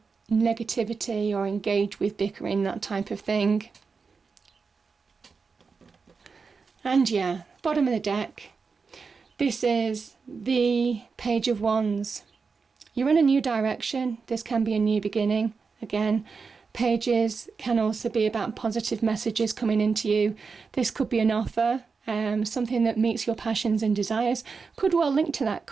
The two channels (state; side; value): quieter; left; 5.0 dB